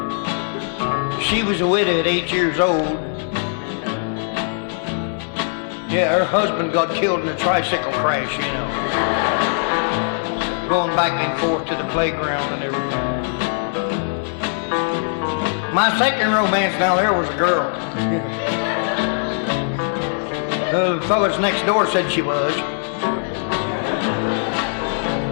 She was a widow at 8 years old. Yeah, her husband got killed in a tricycle crash, you know. Going back and forth to the playground and everything. My second romance now there was a girl. The fellas next door said she was.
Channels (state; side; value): silent; right; 55 dB below the other